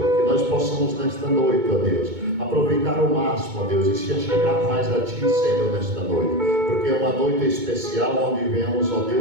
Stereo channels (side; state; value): left; late; 2.2 ms